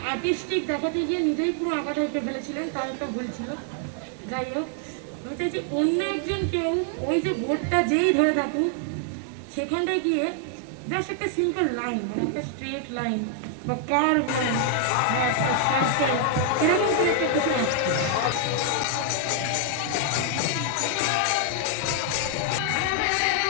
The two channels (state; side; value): different; both; correlation 0.00